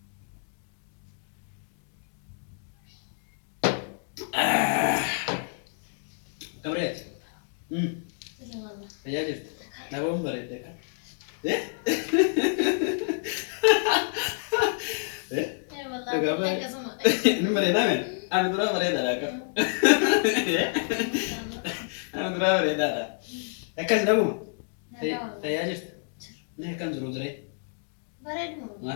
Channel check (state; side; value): silent; right; digital silence